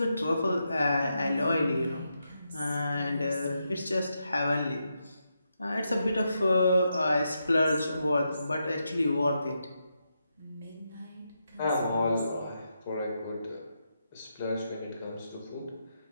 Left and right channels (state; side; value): inverted; both; correlation -0.84